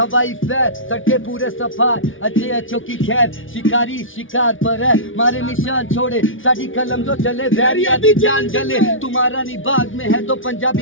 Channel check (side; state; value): right; late; 0.57 ms